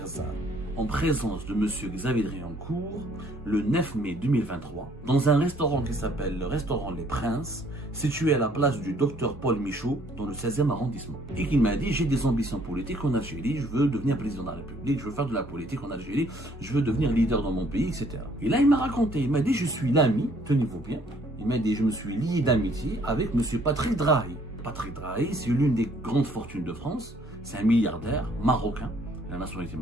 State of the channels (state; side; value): normal; both; correlation 0.62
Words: en présence de M. Xavier Driancourt le 9 mai 2023 dans un restaurant qui s'appelle le restaurant Les Princes, situé à la place du docteur Paul Michaud dans le 16e arrondissement. Et qu'il m'a dit, j'ai des ambitions politiques en Algérie, je veux devenir président de la République, je veux faire de la politique en Algérie, je veux devenir leader dans mon pays, etc. Et là, il m'a raconté, il m'a dit, je suis l'ami, tenez-vous bien, il m'a dit, je me suis lié d'amitié avec M. Patrick Drahi. Patrick Drahi, c'est l'une des grandes fortunes de France, c'est un milliardaire marocain, la nationalité